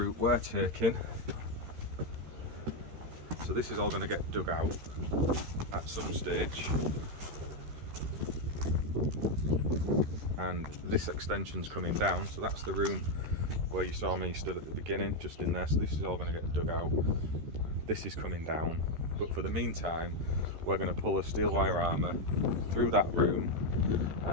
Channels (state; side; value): late; left; 13 ms